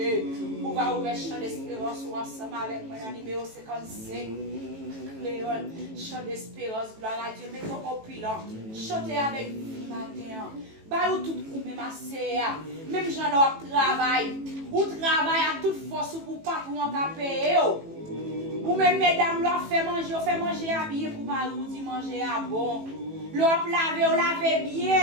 On va ouvrir champ d'espérance ensemble avec moi dans le numéro 55. Léon, chant d'espérance, gloire à Dieu, mettons au pilon, chantez avec vous matin. Bah, ou tout ou même assez, même j'en ai travail, ou travail à toute force pour patron à payer. Ou même mesdames, l'on fait manger habillé pour marou, dit manger à bon. L'on laver, ou laver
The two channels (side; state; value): left; late; 18 ms